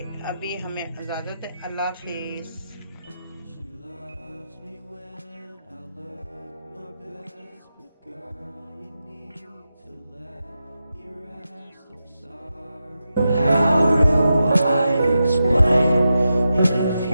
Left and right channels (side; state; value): both; inverted; correlation -0.89